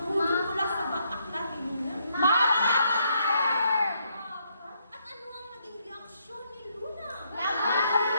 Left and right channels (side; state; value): both; inverted; correlation -0.74